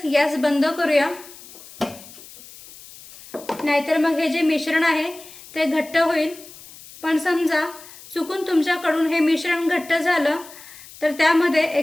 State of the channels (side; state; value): left; noise; hiss, 19 dB below the sound